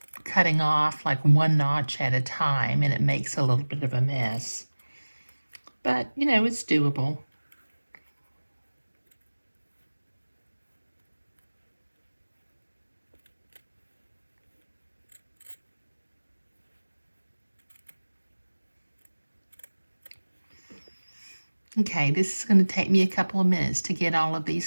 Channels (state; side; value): inverted; both; correlation -1.00